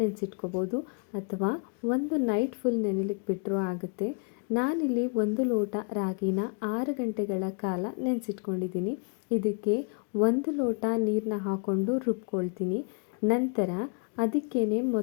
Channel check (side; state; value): right; quieter; 37.5 dB